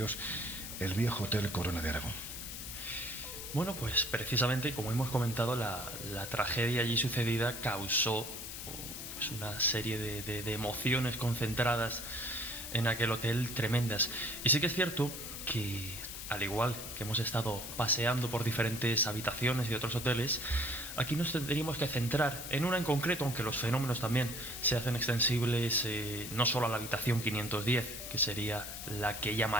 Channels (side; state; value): left; noise; hiss, 8 dB below the sound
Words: el viejo Hotel Corona de Aragón? Bueno, pues precisamente, como hemos comentado, la tragedia allí sucedida causó pues una serie de emociones concentradas en aquel hotel tremendas. Y sí que es cierto que, al igual que hemos estado paseando por diferentes habitaciones y otros hoteles, aquí nos tendríamos que centrar en una en concreto, aunque los fenómenos también se hacen extensibles no solo a la habitación 510, que sería la que